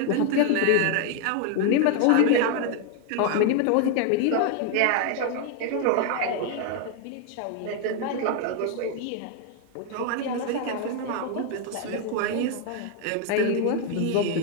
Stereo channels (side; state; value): both; different; correlation 0.00